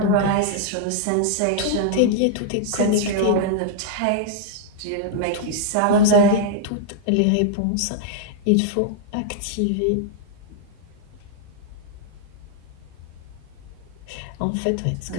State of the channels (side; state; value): both; different; correlation -0.01